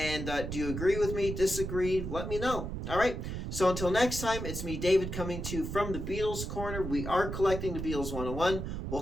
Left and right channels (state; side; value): noise; right; rumble, 5 dB below the sound